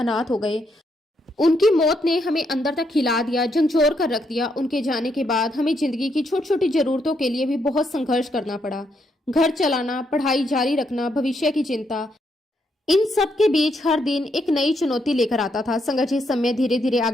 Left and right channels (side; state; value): both; normal; correlation 0.77